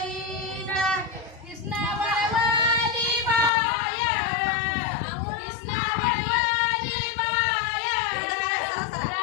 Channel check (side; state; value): right; drops out; at 3.5 s